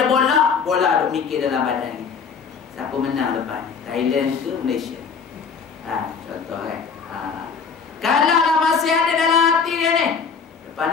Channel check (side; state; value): right; quieter; 5.8 dB